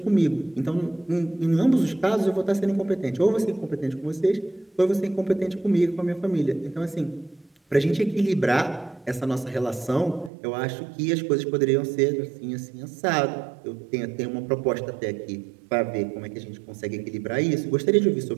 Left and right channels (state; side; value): drops out; left; at 10.3 s